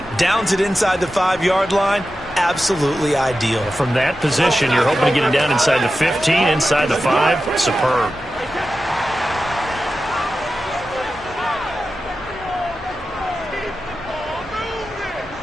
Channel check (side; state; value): both; normal; correlation 0.92